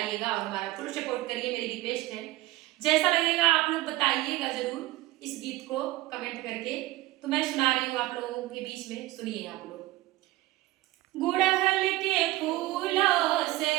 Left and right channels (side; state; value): left; quieter; 17.8 dB